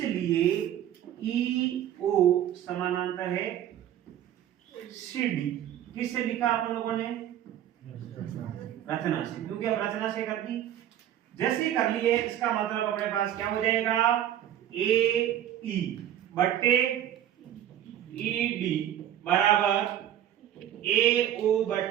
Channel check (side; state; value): left; quieter; 11.1 dB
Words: ई ओ समानांतर है सी डी। किससे लिखा आप लोगों ने? रचना से, क्योंकि अब रचना से कर दी। जैसे ही कर लिए, इसका मतलब अपने पास क्या हो जाएगा, ए ई बट्टे ई डी बराबर ए ओ